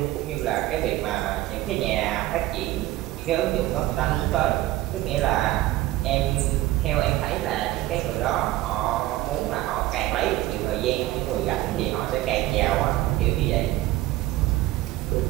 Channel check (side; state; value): left; quieter; 16.4 dB